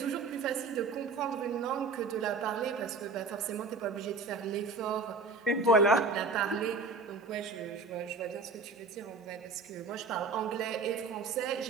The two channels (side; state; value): left; quieter; 4.0 dB